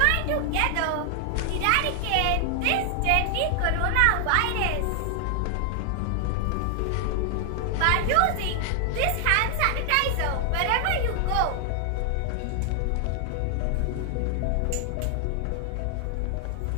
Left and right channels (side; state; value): both; different; correlation 0.00